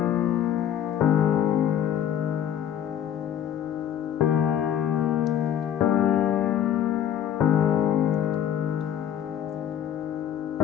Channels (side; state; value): right; quieter; 9.9 dB